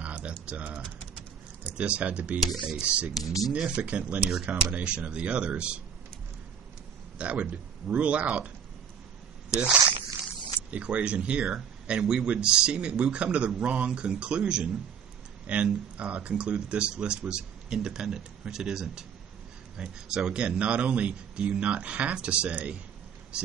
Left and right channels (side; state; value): left; quieter; 7.5 dB